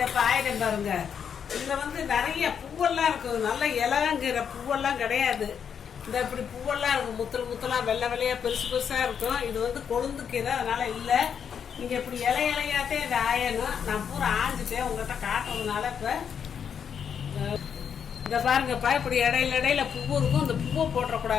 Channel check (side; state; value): right; quieter; 7.6 dB